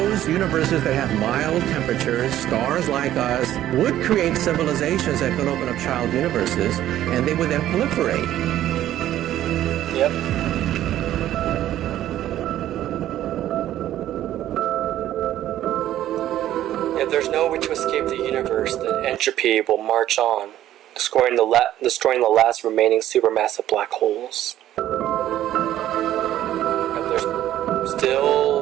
universes that have mild temperatures, stars like us, would create civilizations that could open up child universes, and they would then proliferate. Yep. If there's no way to escape the universe, then entropy will march on, destroying the last remaining supermassive black holes. And there's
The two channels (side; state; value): left; quieter; 12.7 dB